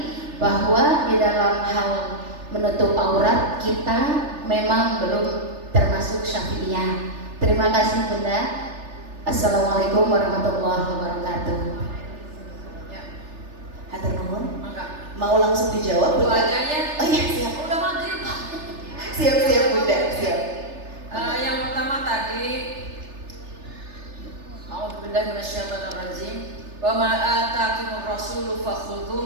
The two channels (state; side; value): late; left; 3.4 ms